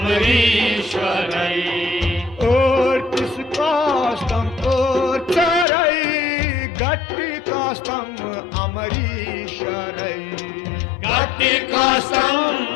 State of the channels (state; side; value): drops out; right; at 5.7 s